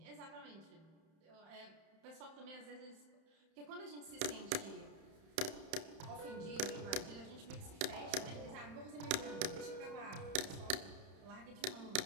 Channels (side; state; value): left; late; 31 ms